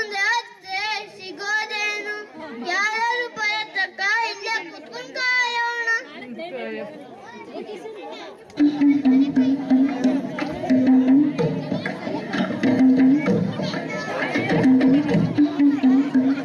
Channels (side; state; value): both; identical; correlation 1.00